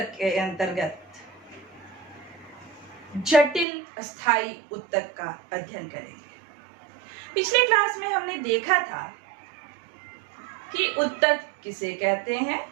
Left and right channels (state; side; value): drops out; left; at 3.7 s